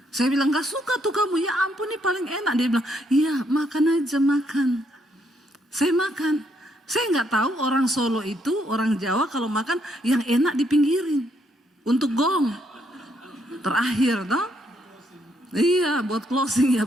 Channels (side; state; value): both; normal; correlation 0.73